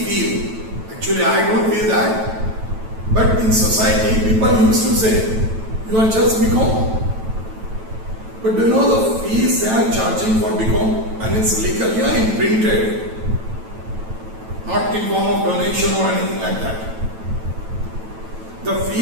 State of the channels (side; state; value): left; late; 9.1 ms